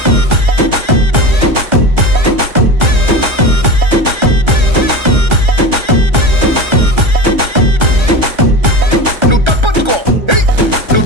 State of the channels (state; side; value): late; left; 1.3 ms